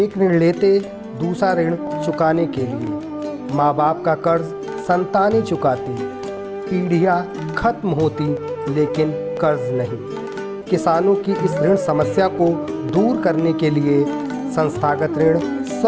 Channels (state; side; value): identical; both; correlation 1.00